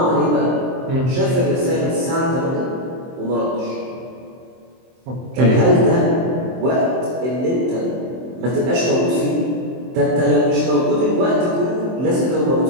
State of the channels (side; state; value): left; late; 23 ms